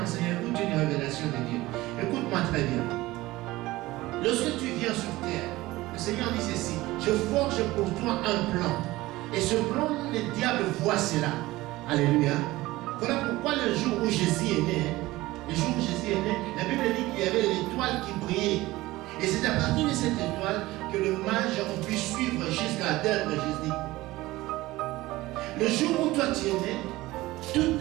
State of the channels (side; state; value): left; quieter; 18.5 dB